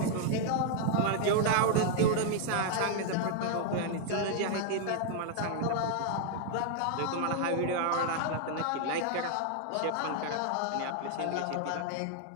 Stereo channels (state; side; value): different; both; correlation 0.00